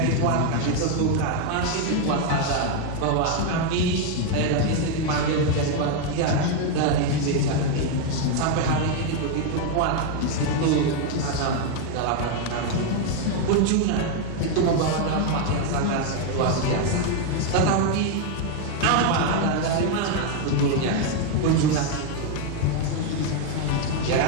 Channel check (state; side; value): different; both; correlation 0.01